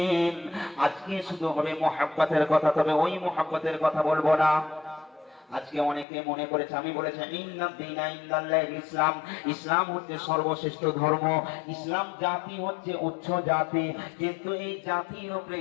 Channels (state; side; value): drops out; right; at 6.1 s